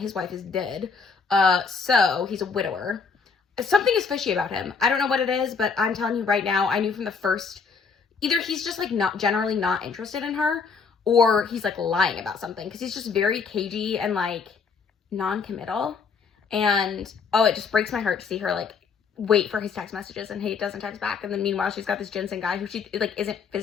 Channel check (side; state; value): right; quieter; 5.4 dB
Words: wife is dead. So he's a widower. Something is fishy about him. I don't know what it is, but I'm telling you right now, I knew from the first, either he's just like generally not interested in her, or he's like lying about something, because he's just very cagey and like non-committal. And it just breaks my heart to see her like wait for his text messages and he doesn't text back. And then meanwhile, she's got this Jensen guy who she like isn't